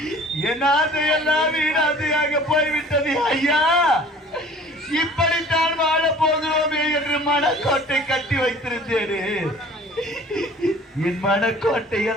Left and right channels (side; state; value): both; normal; correlation 0.48